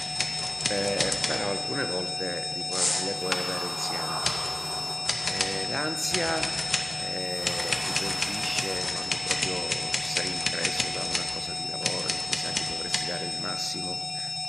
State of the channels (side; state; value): both; normal; correlation 0.97